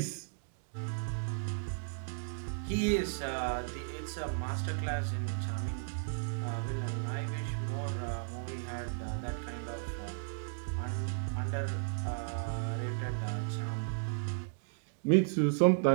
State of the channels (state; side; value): silent; left; digital silence